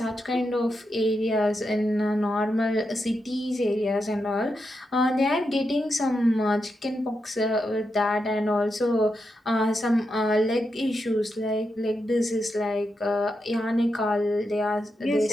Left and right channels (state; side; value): normal; both; correlation 0.86